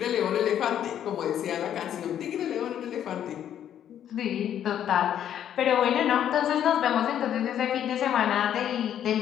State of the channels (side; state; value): right; quieter; 10.1 dB